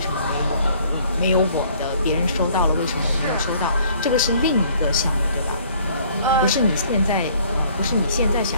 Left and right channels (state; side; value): inverted; both; correlation -0.59